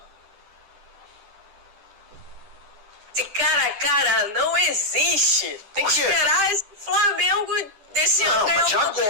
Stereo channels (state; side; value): late; left; 10 ms